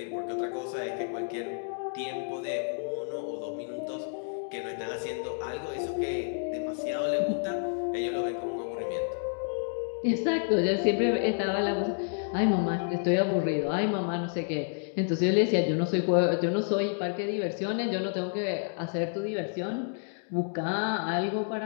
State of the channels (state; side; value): silent; right; 58 dB below the other